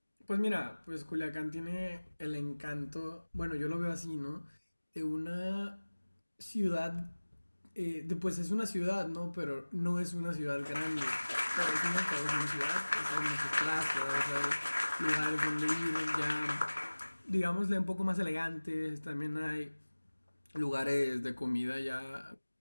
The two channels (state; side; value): inverted; both; correlation -1.00